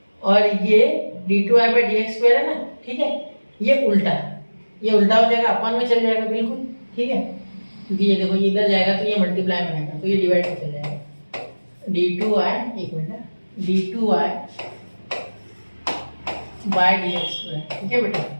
और ये d2y बाई dx स्क्वायर है ना, ठीक है, ये उल्टा हो जाएगा, अपन में चल जाएगा बिल्कुल, ठीक है, क्योंकि ये देखो ये इधर जाएगा तो ये मल्टीप्लाई में आएगा, तो ये डिवाइड में चल जाएगा, d2y, एक minute, d2y by dx square, ठीक है बेटा।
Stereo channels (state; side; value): inverted; both; correlation -1.00